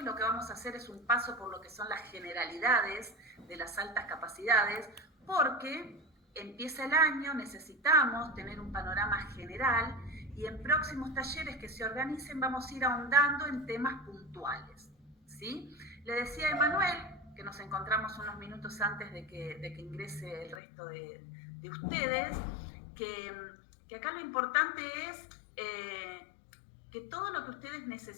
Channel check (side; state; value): right; drops out; at 20.6 s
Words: Lo que vamos a hacer es un paso por lo que son las generalidades de las altas capacidades, porque empieza el año, necesitamos tener un panorama general, y en próximos talleres que se organicen vamos a ir ahondando en temas puntuales, ¿sí? Le decía a Emanuel, que nos encontramos unos minutos antes de que ingrese el resto de ustedes, que acá lo importante es que todo lo que ustedes